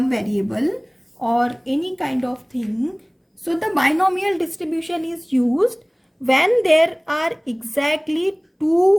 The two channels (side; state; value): both; identical; correlation 1.00